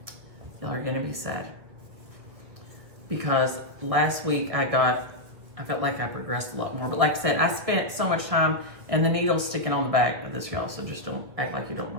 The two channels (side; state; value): left; late; 1.9 ms